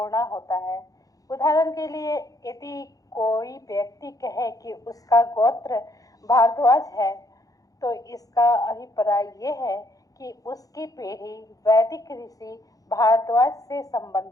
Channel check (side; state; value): right; late; 0.17 ms